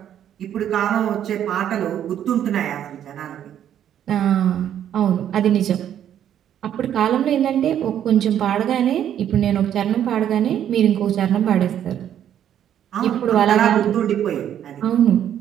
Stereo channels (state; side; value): quieter; left; 10.2 dB